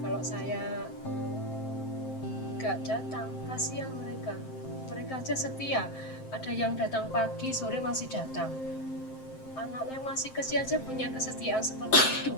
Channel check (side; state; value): right; late; 7.6 ms